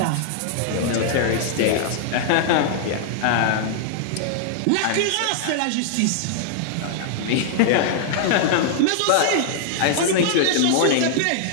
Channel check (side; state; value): both; different; correlation -0.01